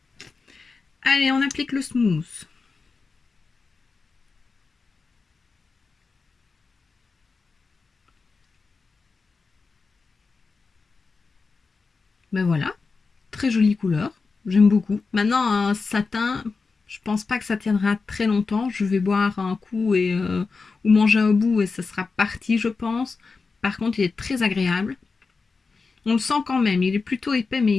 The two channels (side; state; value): right; quieter; 4.4 dB